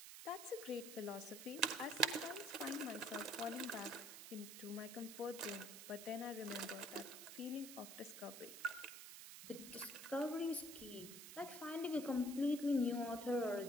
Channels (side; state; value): right; noise; hiss, 11 dB below the sound